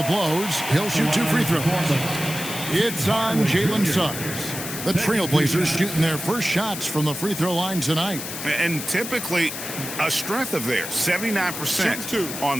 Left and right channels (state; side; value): noise; left; hiss, 7 dB below the sound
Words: blows. He'll shoot 2 free throws. It's on Jalen Suggs. The Trailblazers shooting their first shots from the free throw line tonight. And typically a strength of theirs, 79% on